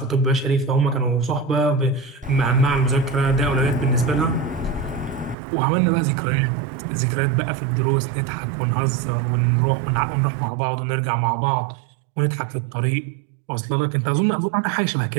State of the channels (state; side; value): drops out; left; at 5.4 s